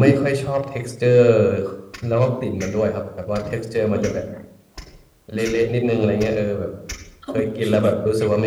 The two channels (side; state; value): both; identical; correlation 1.00